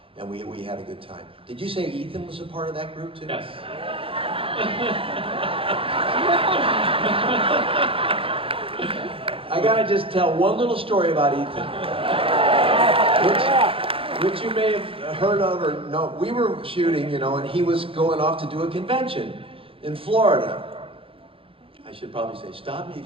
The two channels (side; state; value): left; late; 0.26 ms